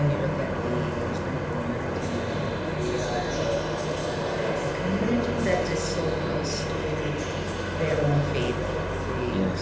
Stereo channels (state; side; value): noise; right; hum, 23 dB below the sound